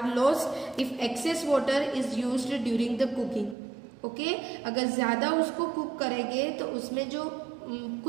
lost if excess water is used during the cooking. Okay, अगर ज्यादा उसको कुक करेंगे तो उसमें जो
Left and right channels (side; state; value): left; drops out; at 3.6 s